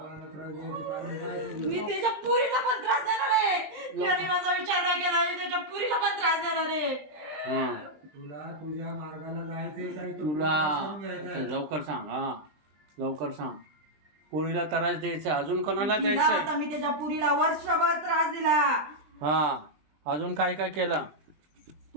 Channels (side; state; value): left; late; 20 ms